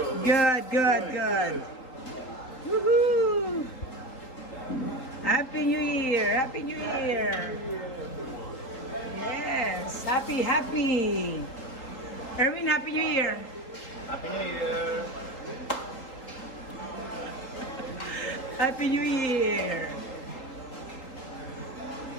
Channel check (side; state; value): right; late; 3.8 ms